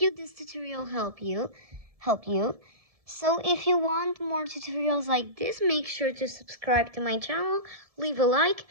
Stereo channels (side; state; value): left; late; 1.7 ms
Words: tutorial help you. So if you want more tutorials like this, make sure to subscribe to my channel, leave a like,